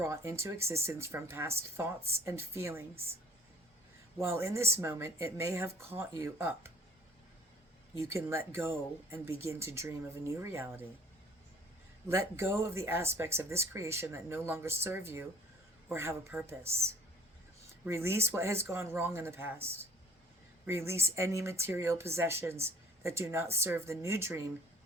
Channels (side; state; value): both; normal; correlation 0.55